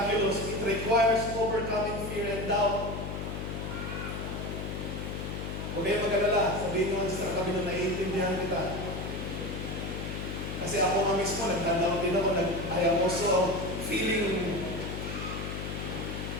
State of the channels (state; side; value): noise; left; hum, 5 dB below the sound